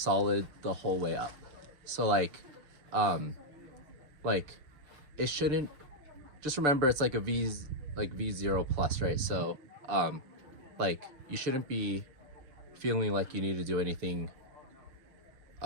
the whole way up. So like it shouldn't, just remember it's like a V0 plus, right? So like you shouldn't be feeling like you need to do anything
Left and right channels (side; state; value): left; late; 6.6 ms